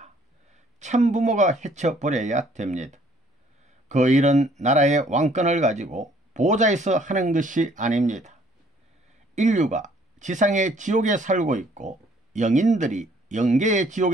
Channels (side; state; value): both; normal; correlation 0.61